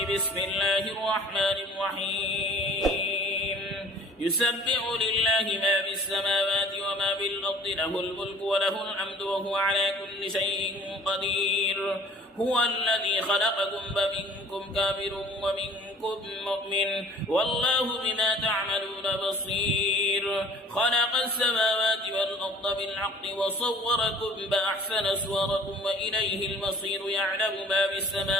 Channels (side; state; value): both; normal; correlation 0.49